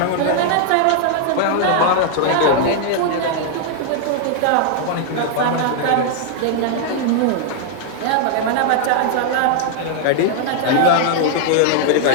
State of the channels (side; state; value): both; different; correlation 0.00